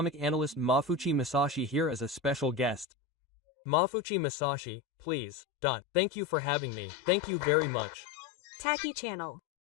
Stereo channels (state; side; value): drops out; right; at 2.9 s